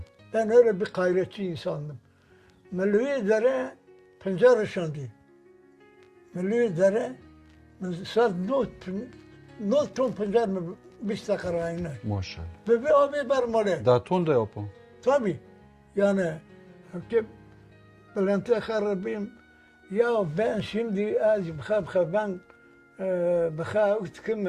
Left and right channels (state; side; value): identical; both; correlation 1.00